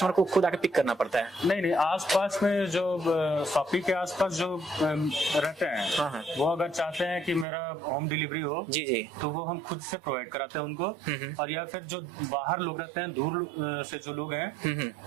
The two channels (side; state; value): left; drops out; at 7.5 s